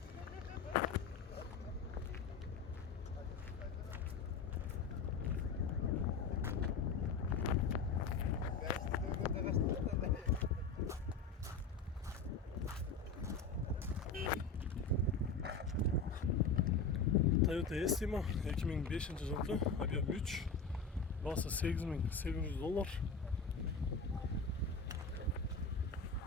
Toyota Estima 2005 жылғы, объем 3, басы $8800.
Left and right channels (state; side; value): quieter; right; 4.8 dB